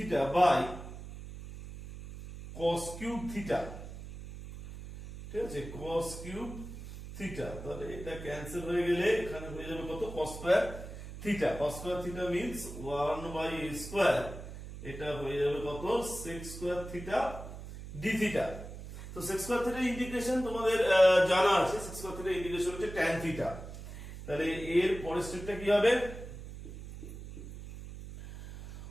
by cos cube theta, ঠিক আছে cos cube theta, তাহলে এটা ক্যান্সেল হয়ে গেলে এখানে হয়ে যাবে কত cos square theta, cos square theta means 1 by a square, এটা হয়ে যাবে কত sec square theta d theta। তো sec square theta ইন্টিগ্রেশন তোমাদের জানা আছে, sec square theta ইন্টিগ্রেশন হচ্ছে tan theta। তাহলে এর পরের স্টেপটা কি হবে,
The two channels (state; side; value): noise; right; hum, 11 dB below the sound